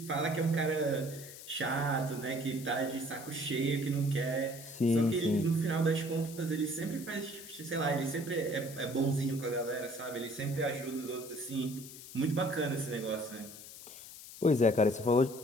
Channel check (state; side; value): noise; left; hiss, 14 dB below the sound